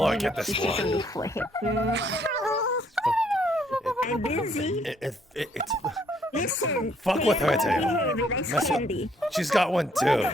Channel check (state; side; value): normal; both; correlation 0.67